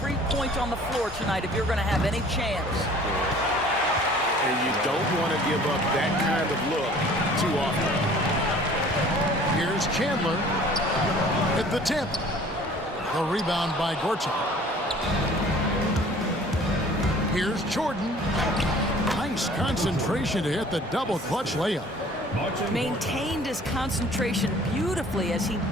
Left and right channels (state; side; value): normal; both; correlation 0.50